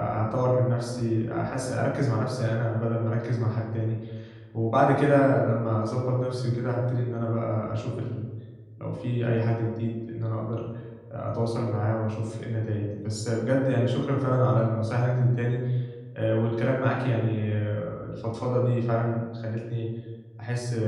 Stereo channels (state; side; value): identical; both; correlation 1.00